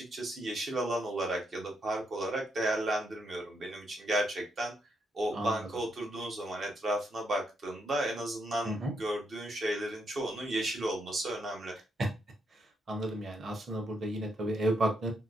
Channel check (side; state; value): both; normal; correlation 0.78